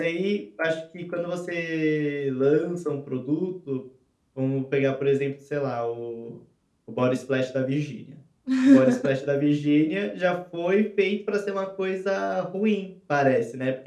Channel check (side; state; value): both; identical; correlation 1.00